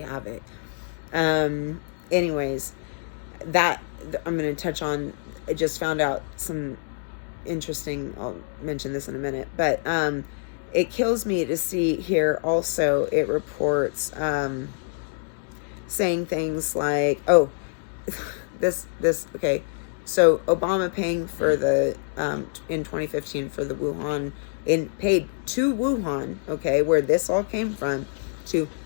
have it. Anyways, that I'm going to touch on. I just found out some interesting, I'll mention this in a minute, but it kills me to see here also it reports saying things like, oh, this okay, so Obama paying for the in 2015 for the Wuhan, paid to Wuhan, okay, where this all came from, to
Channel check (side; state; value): right; silent; digital silence